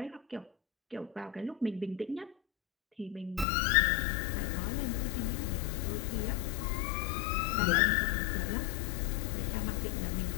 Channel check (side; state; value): right; drops out; at 3.5 s